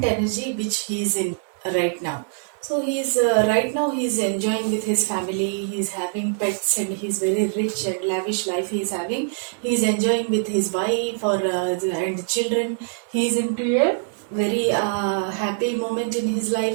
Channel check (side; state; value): left; silent; digital silence